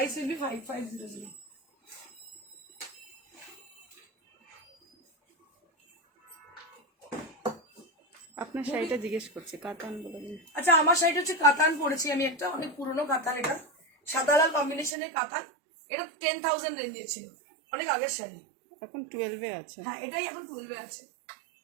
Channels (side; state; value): left; drops out; at 14.9 s